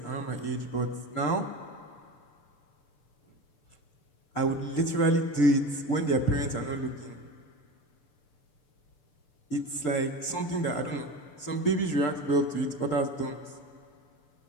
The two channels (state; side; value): late; right; 6.8 ms